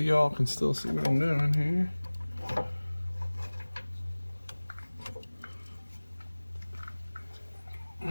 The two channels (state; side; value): inverted; both; correlation -1.00